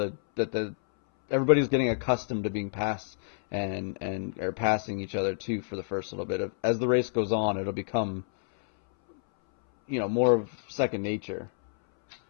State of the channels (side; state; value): right; silent; 59 dB below the other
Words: everybody's getting accustomed to being passed and are passing each other too for the first little bit. As the race goes on, it'll become more of second nature.